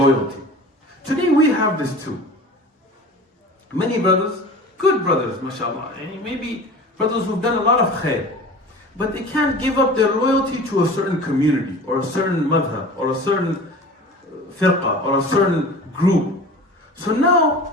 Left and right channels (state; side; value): normal; both; correlation 0.39